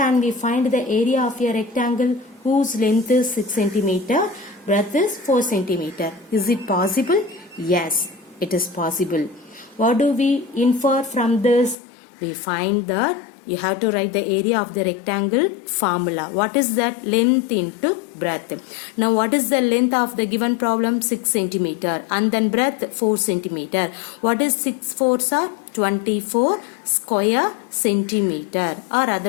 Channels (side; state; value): right; drops out; at 11.8 s